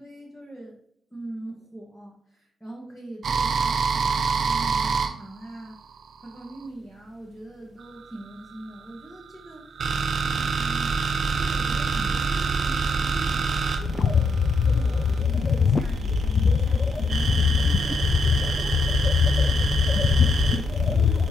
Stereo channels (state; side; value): normal; both; correlation 0.77